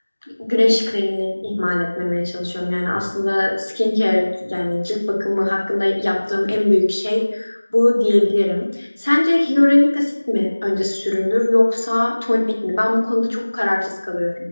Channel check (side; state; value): both; inverted; correlation -1.00